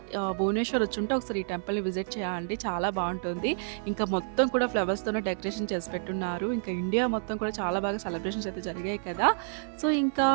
భువనేశ్వర్ వచ్చుంటే ఒకసారి ఈ టెంపుల్‌ని విజిట్ చేయండి. చాలా బాగుంటుంది. ఇంకా మొత్తం కూడా ఫ్లవర్స్‌తోనే డెకరేషన్ చేసి పెట్టున్నారు. ఇంకా ఇండియా మొత్తం కూడా చాలా బాగా సెలబ్రేషన్స్ అయితే జరిగాయి కదా! సో, ఇంకా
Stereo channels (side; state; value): left; silent; 57 dB below the other